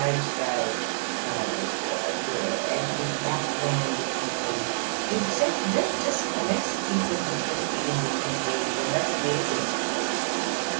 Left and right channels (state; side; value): silent; left; digital silence